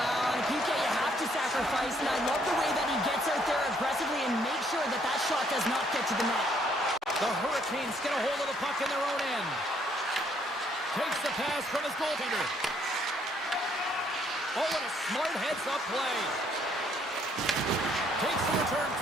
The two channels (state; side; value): normal; both; correlation 0.68